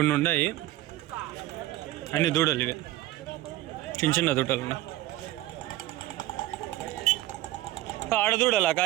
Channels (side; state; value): left; quieter; 16.0 dB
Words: ఉన్నాయి. అన్ని దూడలు ఇవి, చిన్న చిన్న దూడలు ఉన్నాయి. ఆడ దూడలా కా